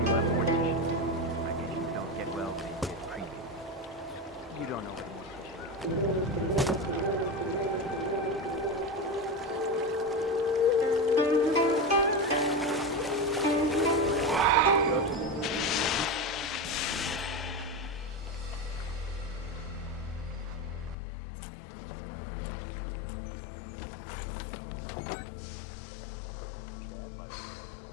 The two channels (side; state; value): right; drops out; at 21.0 s